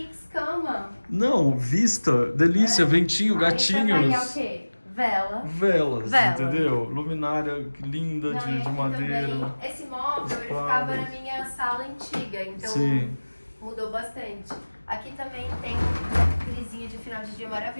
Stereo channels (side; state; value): both; inverted; correlation -1.00